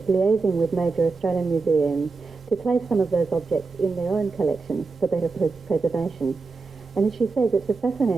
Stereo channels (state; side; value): quieter; left; 4.2 dB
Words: liaising with major Australian museums to place some of those objects in their own collections for better preservation. And as she says, it's a